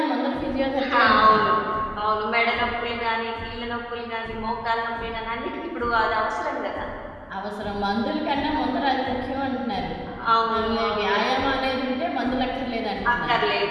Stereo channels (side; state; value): both; identical; correlation 1.00